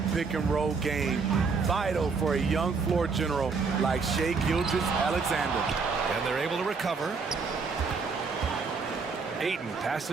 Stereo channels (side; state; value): left; quieter; 4.9 dB